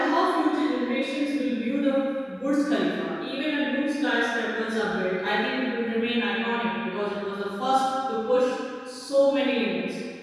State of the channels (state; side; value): identical; both; correlation 1.00